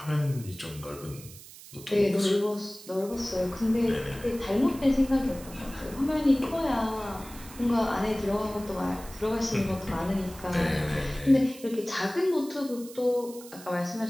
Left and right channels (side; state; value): right; noise; hiss, 17 dB below the sound